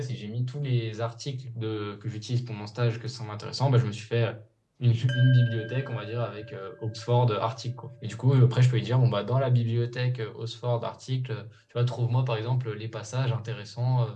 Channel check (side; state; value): both; identical; correlation 1.00